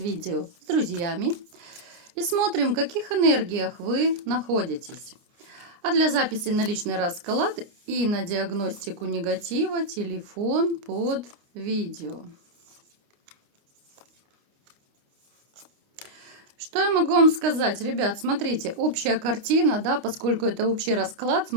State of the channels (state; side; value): late; left; 29 ms